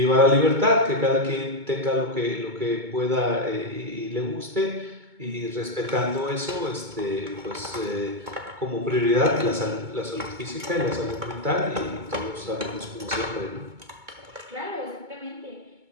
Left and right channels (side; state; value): left; late; 2.2 ms